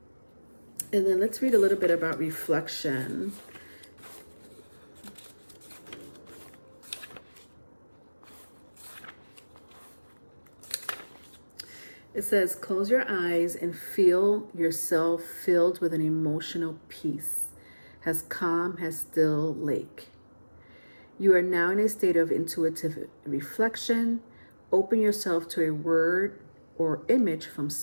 And then let's read a little bit about reflection. It says, close your eyes and feel yourself filled with an emotional peace, as calm as still lake. You are now in a state of intuitive reflection. Open yourself to a word or image from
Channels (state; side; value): inverted; both; correlation -1.00